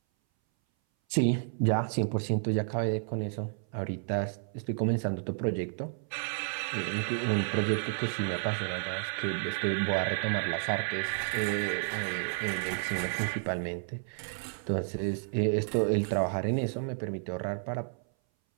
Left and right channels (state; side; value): silent; left; 57 dB below the other